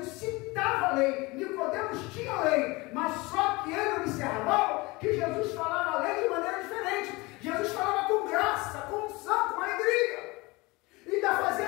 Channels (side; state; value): right; quieter; 23.6 dB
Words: citava a lei, Nicodemos tinha a lei, mas só que ele observava que Jesus falava a lei de maneira diferente. Jesus falava com graça, com unção, com alegria, e ainda